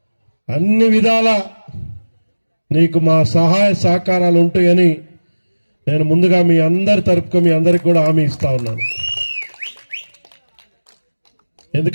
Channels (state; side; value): inverted; both; correlation -1.00